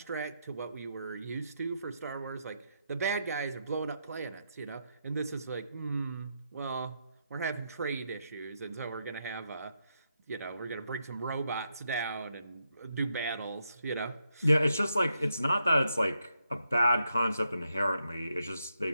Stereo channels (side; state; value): both; inverted; correlation -0.81